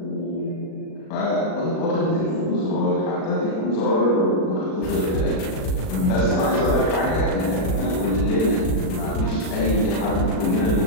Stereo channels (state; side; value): late; right; 37 ms